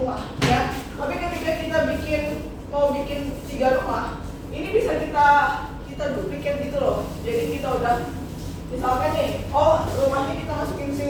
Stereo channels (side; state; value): both; identical; correlation 1.00